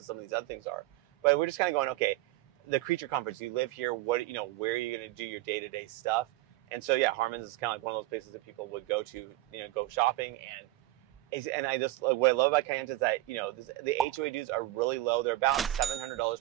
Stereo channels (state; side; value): quieter; left; 17.3 dB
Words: some of these other things are. But we're just kind of going, okay, the Creature Comforts, you live here, what, where are you going to do your day-to-day stuff? And so, yeah, Harmons is kind of like one of those places that people would go to, go shopping, and And I just, what I love about Kayenta is that, you know, the HOA dues are really low. They're about $700